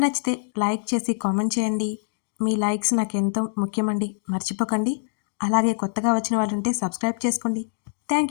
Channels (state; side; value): silent; right; digital silence